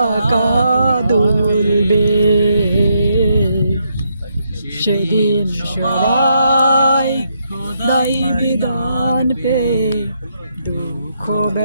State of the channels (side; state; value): both; inverted; correlation -0.77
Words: দুলবে, সেদিন সবাই খোদাই বিধান পে দুঃখ